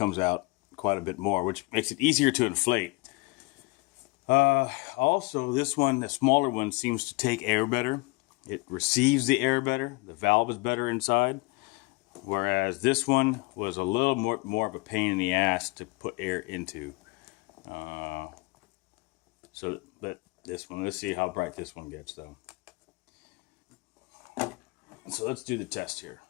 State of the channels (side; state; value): right; quieter; 25.9 dB